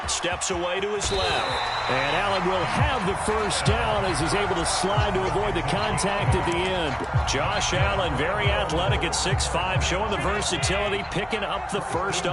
Steps away to his left. And Allen will have the 1st down as he's able to slide to avoid the contact at the end. Josh Allen, very athletic at 6'5", showing the versatility, picking up the 1st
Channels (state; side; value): identical; both; correlation 1.00